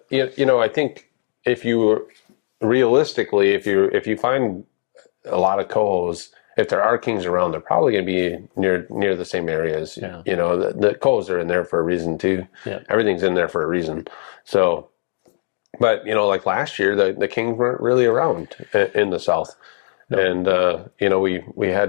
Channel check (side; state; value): right; silent; digital silence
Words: think realistically, if you find a lot of cohos, if there are kings around, they're probably going to be near the same areas. Yeah. The cohos are in there for a reason too. Yeah. Everything's in there for a reason. So, but like last year, the kings weren't really around in the south. No. And we